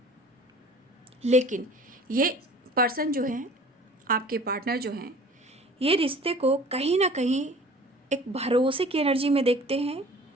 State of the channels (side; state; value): both; normal; correlation 0.46